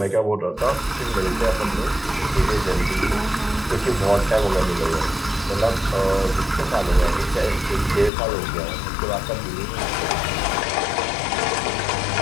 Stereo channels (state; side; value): drops out; right; at 8.1 s